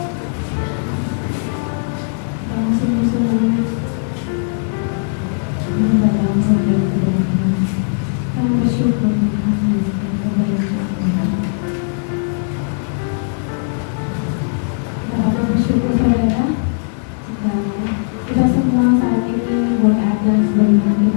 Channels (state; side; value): silent; right; 67 dB below the other